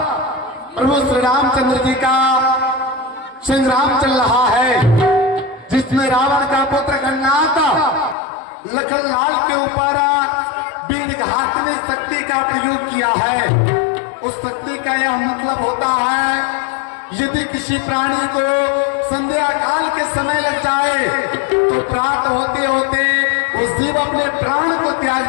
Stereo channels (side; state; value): right; drops out; at 8.2 s